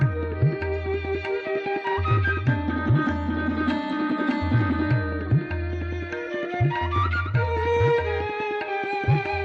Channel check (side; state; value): both; identical; correlation 1.00